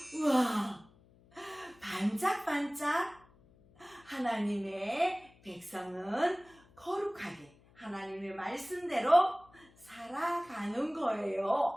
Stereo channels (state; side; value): noise; left; hum, 28 dB below the sound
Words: 우와, 반짝반짝 하나님의 백성은 거룩하게 하나님의 말씀대로 살아가는